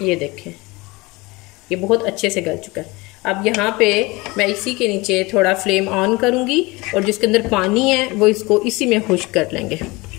ये देखें, ये बहुत अच्छे से गल चुका है। अब यहाँ पे मैं इसी के नीचे थोड़ा फ्लेम ऑन करूँगी और जिसके अंदर पानी है वो इसको इसी में खुश्क कर लेंगे।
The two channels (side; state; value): right; quieter; 23.5 dB